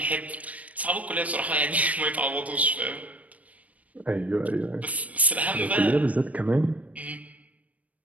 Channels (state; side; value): late; left; 0.069 ms